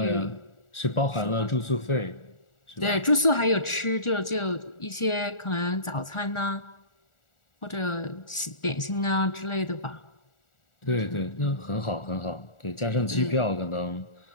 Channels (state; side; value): late; right; 1.4 ms